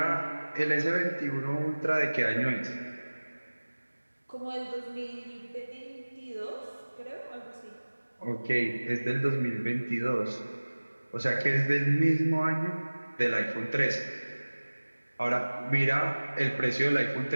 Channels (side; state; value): both; inverted; correlation -1.00